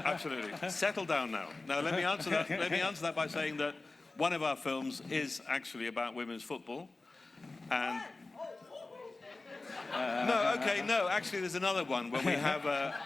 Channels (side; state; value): right; quieter; 3.3 dB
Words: Absolutely. Settle down now. Now let me answer that. Let me answer that by saying that one of our films is actually about women's football, and no. Actually, there's another one where